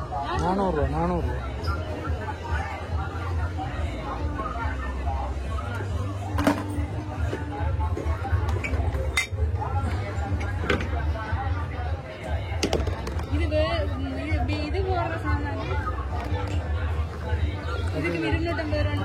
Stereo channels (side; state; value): both; identical; correlation 1.00